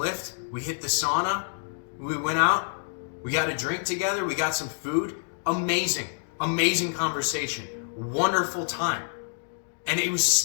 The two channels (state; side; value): silent; right; digital silence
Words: we hit the sauna, we went out, we got a drink together, we got some food. Amazing conversation. Wonderful time. And it was